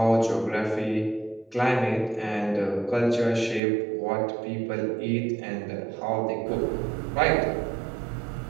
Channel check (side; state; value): left; drops out; at 3.6 s